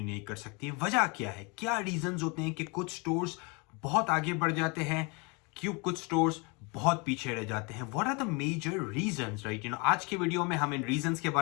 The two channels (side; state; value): right; quieter; 30.3 dB